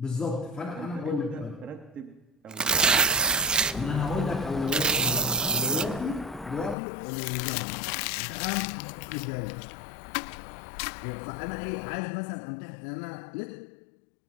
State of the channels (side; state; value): right; drops out; at 6.8 s